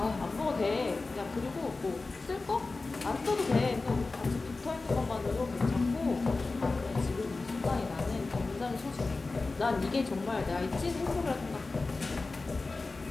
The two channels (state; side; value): quieter; right; 3.6 dB